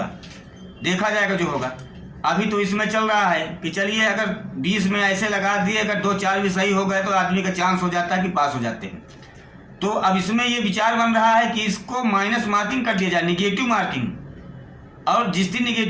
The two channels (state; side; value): identical; both; correlation 1.00